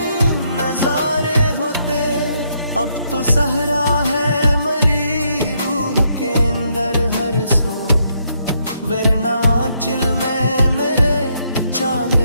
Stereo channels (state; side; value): inverted; both; correlation -0.75